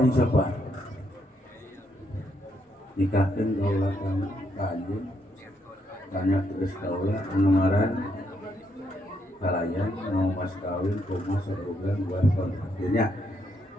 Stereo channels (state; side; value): normal; both; correlation 0.76